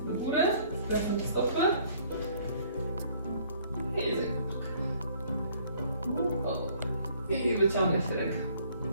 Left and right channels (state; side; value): inverted; both; correlation -0.60